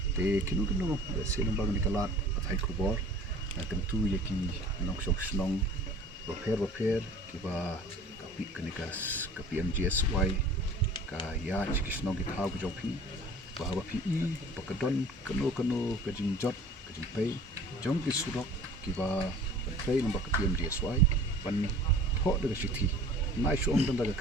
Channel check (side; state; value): both; normal; correlation 0.47